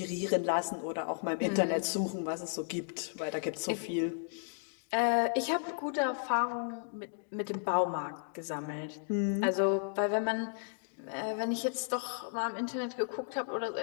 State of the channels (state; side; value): silent; right; digital silence